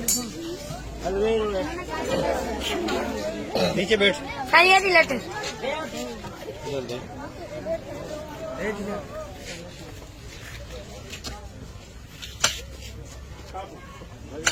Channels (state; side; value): identical; both; correlation 1.00